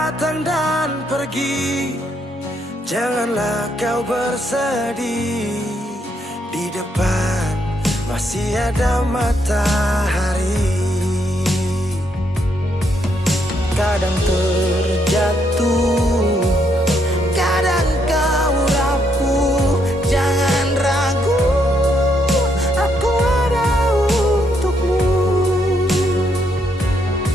dan pergi, janganlah kau bersedih. Di depan masih ada matahari. Kadang terjatuh, kadang kau rapuh, jangan ragu, aku ada untukmu.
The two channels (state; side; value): normal; both; correlation 0.75